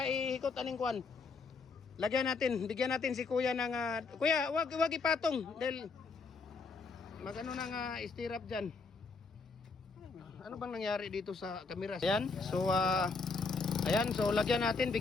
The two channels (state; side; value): quieter; right; 4.4 dB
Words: ihikot aning kuan. Lagyan natin, bigyan natin si Kuya ng Kuya, wag ipatong dahil magano nang stirrup diyan. Ano bang nangyari dito sa camera? Ayan, so lagyan natin,